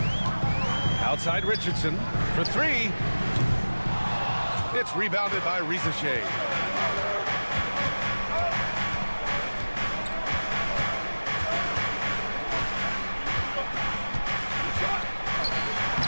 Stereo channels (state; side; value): inverted; both; correlation -1.00